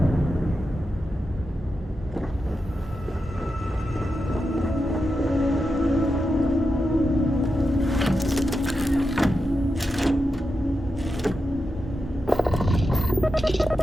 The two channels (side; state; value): both; normal; correlation 0.89